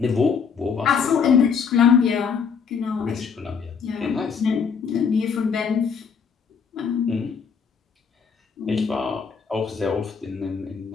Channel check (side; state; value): right; quieter; 6.2 dB